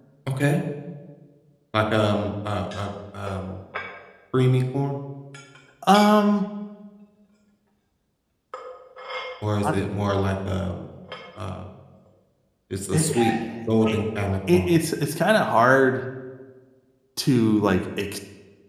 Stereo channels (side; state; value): both; identical; correlation 1.00